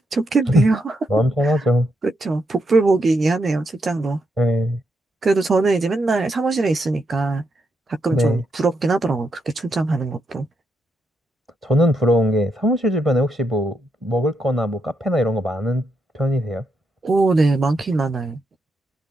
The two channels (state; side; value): normal; both; correlation 0.81